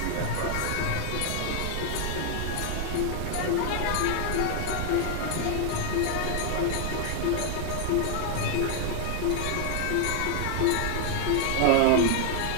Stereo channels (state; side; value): different; both; correlation 0.00